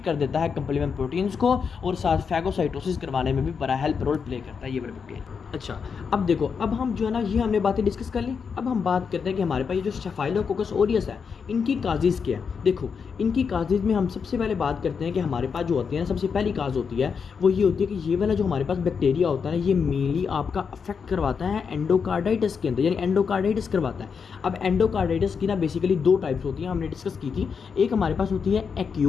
कर देता है कंप्लीमेंट प्रोटीन्स को और साथ फैगोसाइटोसिस करवाने में भी बड़ा हेल्प रोल प्ले करता है ये वाला बैक्टीरिया। अच्छा, अब देखो, अब हम जो है ना ये हमने बातें डिस्कस कर ली। अब हम बात करते हैं कि हमारे पास ये जो स्टेफाइलोकोकस ऑरियस है इनकी काजेज़ क्या है। देखो इनकी काजेज़ में हम सबसे पहले बात करते हैं कि हमारे पास जो होती है ना सबसे पहली काज होती है वो ये होती है कि ये वाला जो हमारे पास बैक्टीरिया होता है ना ये मेनली आपका अफेक्ट करवाता है एंडोकार्डाइटिस के अंदर, यानी एंडोकार्डाइटिस करवाता है। अब एंडोकार्डाइटिस की ना बेसिकली 2 टाइप्स होती हैं, हमने डिस्कस की थी। एक हमारे पास होती है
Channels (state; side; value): quieter; right; 6.1 dB